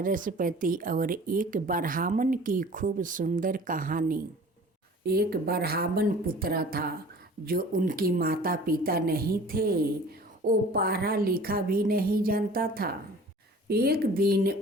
और एक ब्राह्मण की खूब सुंदर कहानी। एक ब्राह्मण पुत्र था जो उनकी माता पिता नहीं थे। वो पढ़ा लिखा भी नहीं जानता था। एक दिन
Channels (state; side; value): normal; both; correlation 0.45